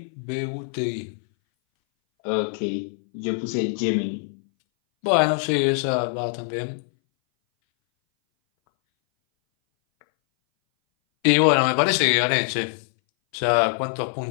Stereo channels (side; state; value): right; silent; 60 dB below the other